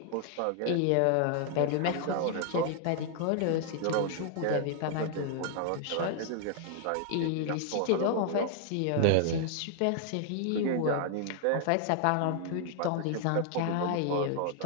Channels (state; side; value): different; both; correlation 0.00